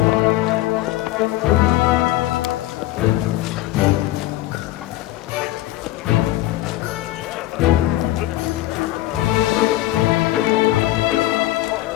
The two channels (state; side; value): quieter; right; 15.7 dB